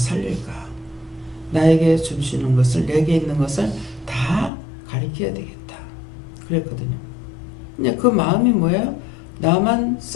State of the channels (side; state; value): right; drops out; at 4.5 s